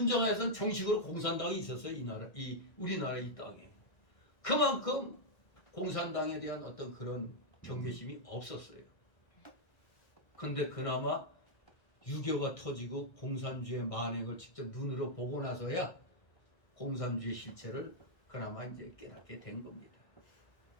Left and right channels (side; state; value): right; late; 1.6 ms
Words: 정식으로 공산당이 있었어요. 이 우리나라 이 땅에. 그만큼 공산당에 대한 어떤 그런 경계심이 없었어요. 근데 그나마 유교가 터지고 공산주의 만행을 직접 눈으로 보고 나서야 공산주의 실체를 그나마 이제 깨닫게 된 겁니다.